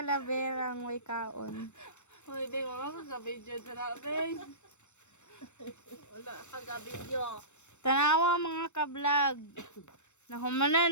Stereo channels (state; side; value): late; right; 0.84 ms